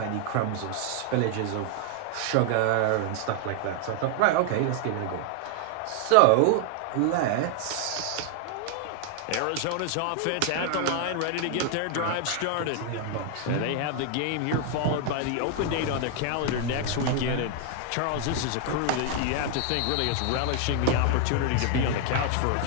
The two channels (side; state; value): both; different; correlation 0.00